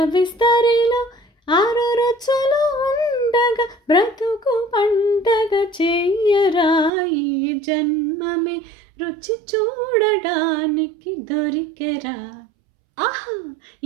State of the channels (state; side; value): drops out; left; at 6.9 s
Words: విస్తరిలో 6 రుచులు ఉండగా బ్రతుకు పండగ చెయ్యరా, ఈ జన్మమే రుచి చూడడానికి దొరికెరా, ఆహా